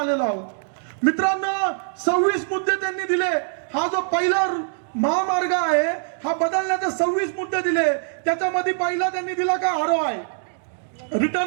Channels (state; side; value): silent; left; digital silence